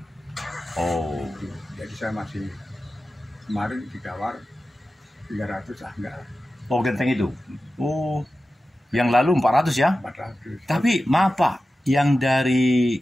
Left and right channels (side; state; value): both; normal; correlation 0.94